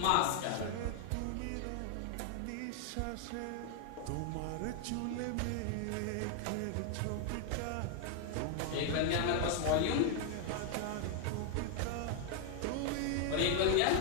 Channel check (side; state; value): both; different; correlation 0.00